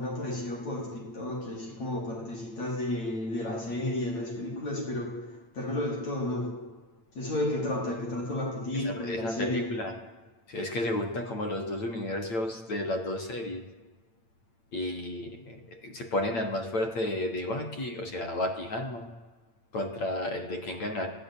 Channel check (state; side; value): late; right; 8.8 ms